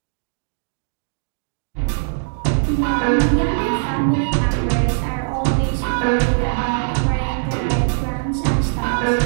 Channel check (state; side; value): silent; left; digital silence